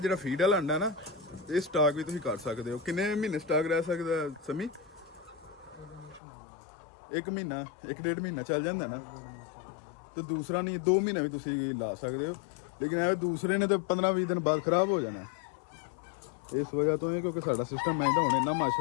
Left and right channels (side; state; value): right; drops out; at 6.2 s